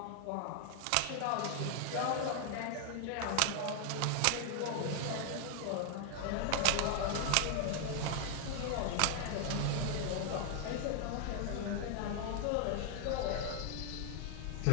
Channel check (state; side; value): different; both; correlation 0.00